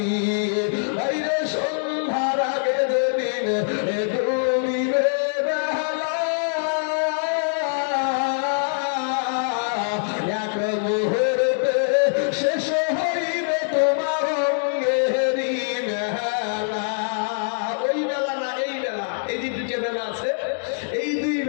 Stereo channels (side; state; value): right; silent; digital silence